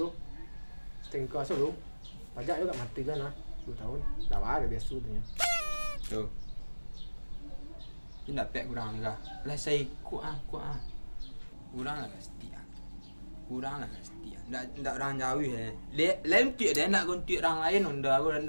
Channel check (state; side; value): inverted; both; correlation -1.00